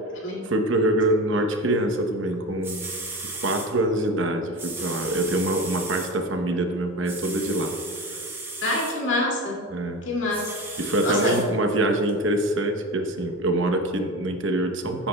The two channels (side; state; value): both; normal; correlation 0.28